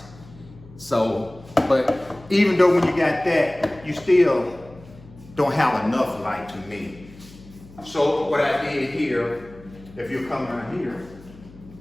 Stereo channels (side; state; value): left; noise; hum, 21 dB below the sound